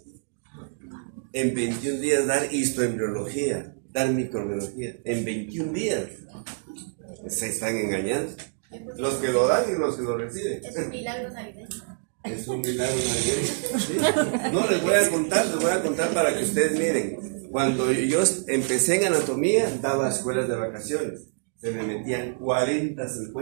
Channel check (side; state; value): left; silent; digital silence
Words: En 21 días dar histoembriología, dar microbiología. En 21 días. Se están engañando. Los que lo dan y los que lo reciben. Es un milagro navideño. Es un milagro navideño. ¿Sí? No, les voy a contar para que ustedes miren. Cuando yo empecé en anatomía, daba escuelas de vacaciones. Se me metían 40,